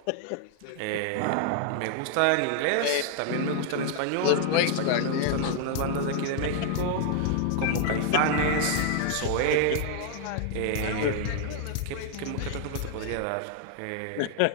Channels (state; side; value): different; both; correlation 0.00